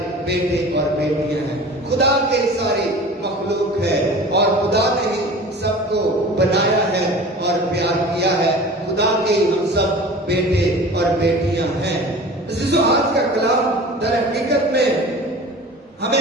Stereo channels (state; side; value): normal; both; correlation 0.39